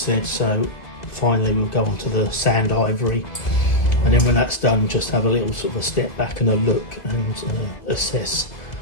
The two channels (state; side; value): late; right; 2.2 ms